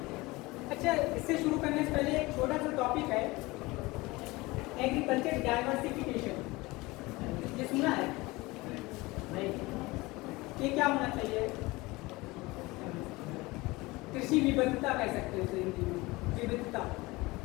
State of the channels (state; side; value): quieter; right; 22.0 dB